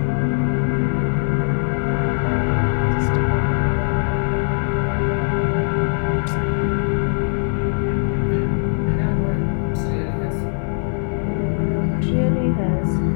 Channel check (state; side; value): silent; right; 65 dB below the other